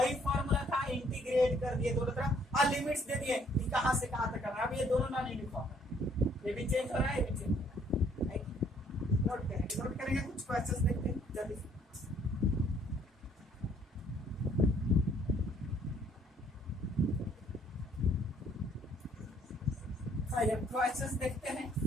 फॉर्मूला था, इंटीग्रेट कर दिए दोनों तरफ और लिमिट्स दे दिए कि कहां से कहां तक करना है। अब ये दोनों नॉन यूनिफॉर्म है, ये भी चेंज हो रहा है, ये भी चेंज हो रहा है। नोट करेंगे, कुछ क्वेश्चंस देखते हैं जल्दी से। क्वेश्चंस देखते हैं।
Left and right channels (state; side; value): normal; both; correlation 0.64